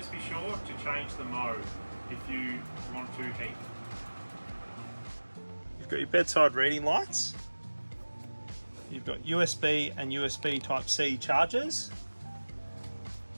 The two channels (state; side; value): inverted; both; correlation -1.00